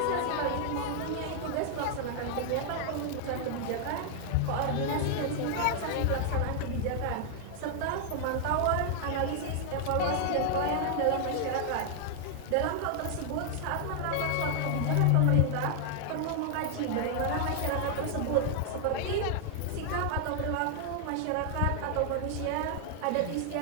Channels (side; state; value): both; different; correlation -0.01